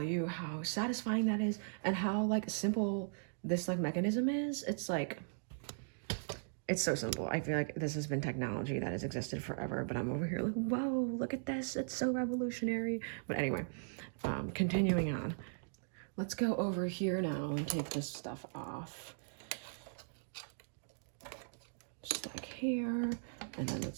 you how satisfying that is and how like simple this like mechanism is. It's like, it's so simple. I feel like this has been technology that has existed forever, but I'm over here like, whoa, look at this. It's so revolutionary. But anyway, continuing on. Let's go over here now and take this stuff off. Just like here. And then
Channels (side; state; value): left; silent; digital silence